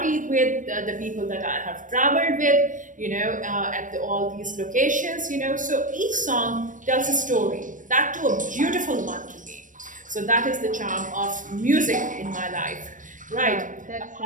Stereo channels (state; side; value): late; left; 0.38 ms